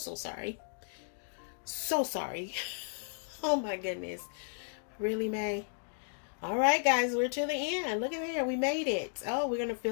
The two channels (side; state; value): right; silent; digital silence